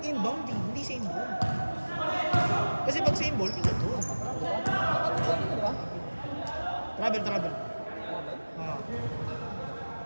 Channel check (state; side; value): inverted; both; correlation -1.00